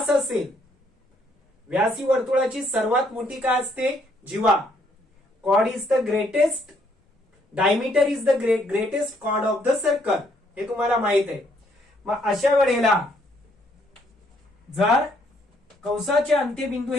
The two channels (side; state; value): both; normal; correlation 0.69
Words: असेल, व्यास ही वर्तुळाची सर्वात मोठी काय असते, जीवा. Chord is the greatest, diameter is the greatest chord of the circle, हे तुम्हाला माहित आहे. मग अशा वेळेला जर कंसाचे अंत्यबिंदू